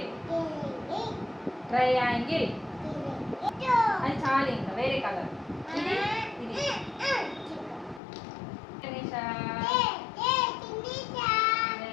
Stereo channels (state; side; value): drops out; right; at 8.0 s